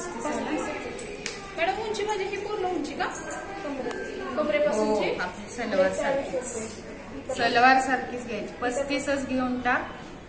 आहे ना मॅडम? उंची म्हणजे ही पूर्ण उंची का? हो, कमरेपासूनची आपली सलवार सारखीच घ्यायची. 35च घेऊन टाक,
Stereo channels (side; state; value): both; identical; correlation 1.00